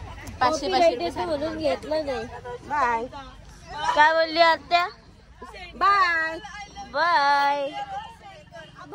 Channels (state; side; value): identical; both; correlation 1.00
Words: म्हणून घेतलं नाही. बाय. काय बोलली आत्या? Bye bye